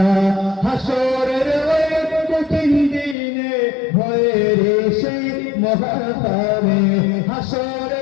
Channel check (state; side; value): drops out; right; at 3.2 s